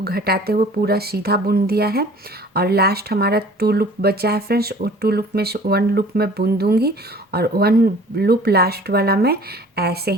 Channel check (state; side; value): normal; both; correlation 0.49